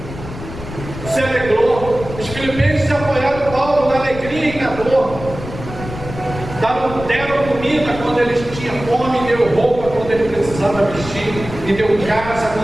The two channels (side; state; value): left; noise; rumble, 11 dB below the sound